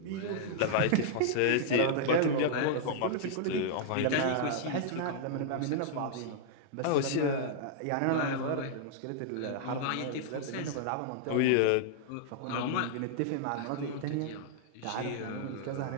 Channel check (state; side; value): different; both; correlation -0.01